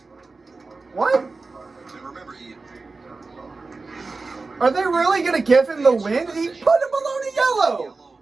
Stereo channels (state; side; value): quieter; left; 3.8 dB